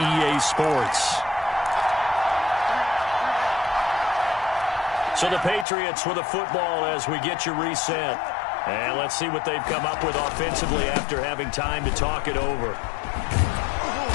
Sports. So the Patriots with the football as we get you reset. And let's see what they've come up with offensively after having time to talk it over.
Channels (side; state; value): right; drops out; at 5.7 s